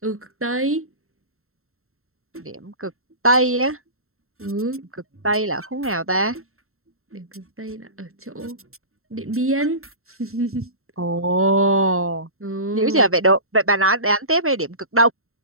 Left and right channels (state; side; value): late; left; 0.62 ms